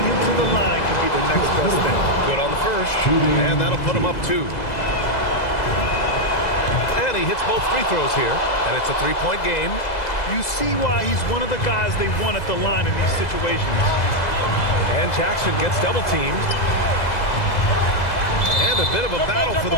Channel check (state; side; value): late; right; 2.0 ms